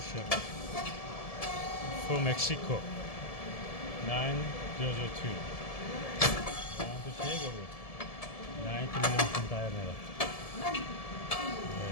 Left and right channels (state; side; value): late; right; 1.7 ms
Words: from Mexico 9002 round shape of it 90 mm diameter. Right.